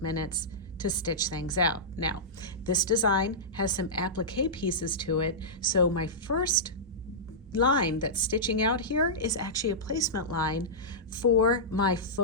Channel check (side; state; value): both; normal; correlation -0.14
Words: minutes to stitch things out. Now, this design has some applique pieces to it, so my first line that's stitching out here is actually a placement line for my